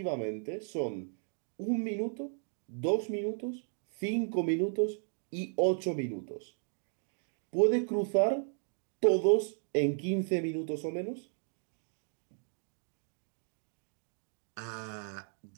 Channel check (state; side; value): silent; left; 55 dB below the other